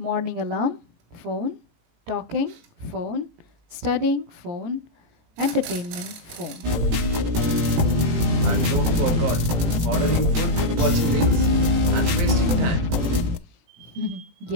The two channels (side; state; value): left; late; 18 ms